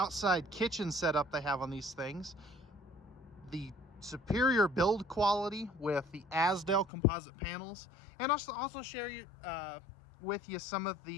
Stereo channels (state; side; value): drops out; right; at 6.9 s